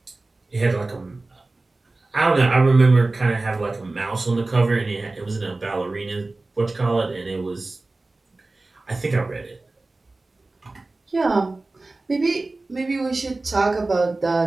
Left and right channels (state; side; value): quieter; left; 3.2 dB